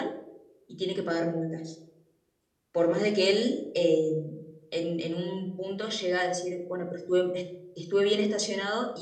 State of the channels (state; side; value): identical; both; correlation 1.00